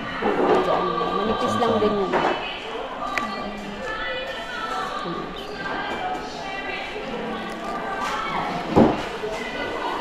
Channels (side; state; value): both; identical; correlation 1.00